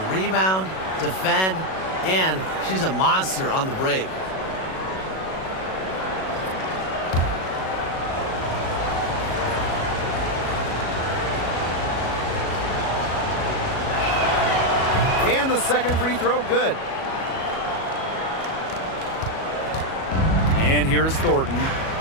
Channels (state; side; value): late; right; 37 ms